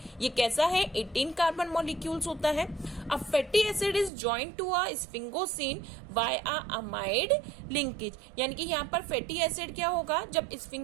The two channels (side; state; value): left; drops out; at 4.1 s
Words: ये कैसा है, 18 कार्बन मॉलिक्यूल्स होता है। A fatty acid is joint to a sphingosine by a amide linkage, यानी कि यहाँ पर फैटी एसिड क्या होगा, जब